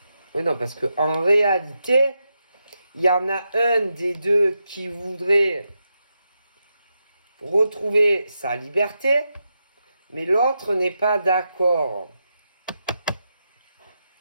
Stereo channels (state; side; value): inverted; both; correlation -0.86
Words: Oui, non, parce qu'en réalité, il y en a un des deux qui voudrait retrouver sa liberté, mais l'autre n'est pas d'accord.